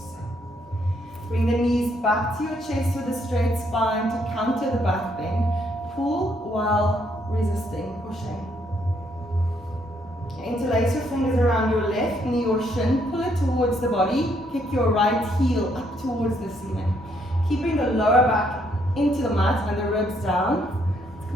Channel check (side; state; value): both; normal; correlation 0.71